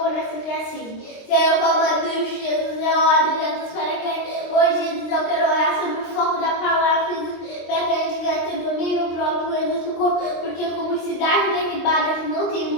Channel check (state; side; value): late; right; 23 ms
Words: oração que é assim. Senhor, como Deus, Jesus, eu oro, Jesus, para que hoje, Jesus, eu quero orar sobre o foco da palavra, Jesus, para que a gente venha ter domínio próprio, Jesus, porque como cidade derribada que não tem